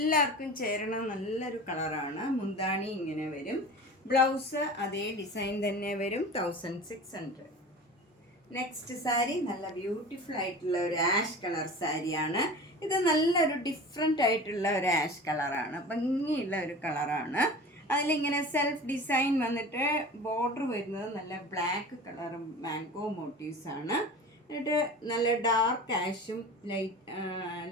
ചേരണ നല്ലൊരു കളറാണ്. മുന്താണി ഇങ്ങനെ വരും. ബ്ലൗസ് അതേ ഡിസൈൻ തന്നെ വരും. 1600. നെക്സ്റ്റ് സാരി നല്ല ബ്യൂട്ടിഫുൾ ആയിട്ടുള്ള ഒരു ആഷ് കളർ സാരിയാണ്. ഇത് നല്ലൊരു ഡിഫറെൻ്റ് ആയിട്ടുള്ള ഒരു ആഷ് കളറാണ്. ഭംഗിയുള്ള ഒരു കളറാണ്. അതിലിങ്ങനെ സെൽഫ് ഡിസൈൻ വന്നിട്ട് ബോർഡർ വരുന്നത് നല്ല ബ്ലാക്ക് കളർ മാംഗോ മോട്ടീവ്സാണ്. എന്നിട്ട് നല്ല ഡാർക്ക് ആഷും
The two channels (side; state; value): both; normal; correlation 0.36